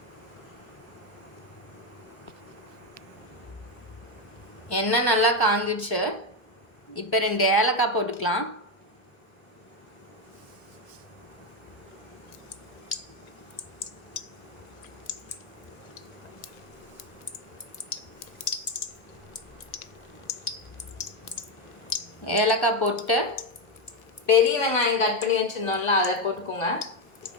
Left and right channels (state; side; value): late; right; 1.0 ms